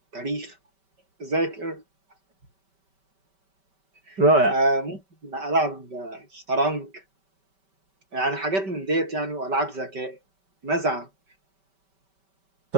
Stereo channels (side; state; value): left; late; 5.2 ms